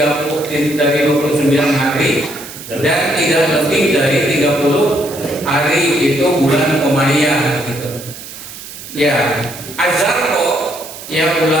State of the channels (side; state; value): right; noise; hiss, 14 dB below the sound